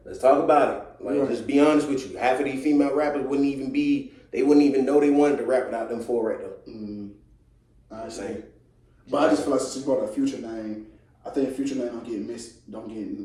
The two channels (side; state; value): both; identical; correlation 1.00